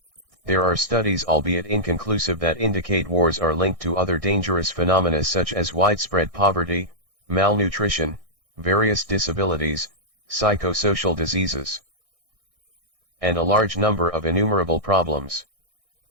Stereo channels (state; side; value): late; left; 1.6 ms